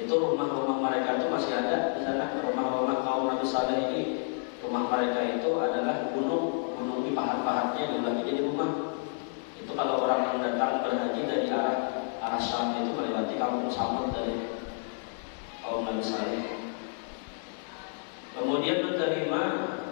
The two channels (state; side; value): silent; right; 58 dB below the other